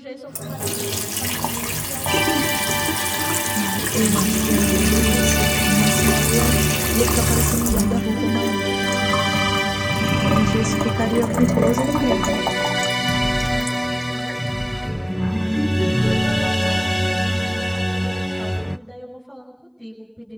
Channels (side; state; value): both; identical; correlation 1.00